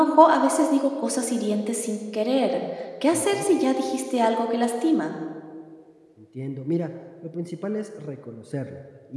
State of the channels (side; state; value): both; identical; correlation 1.00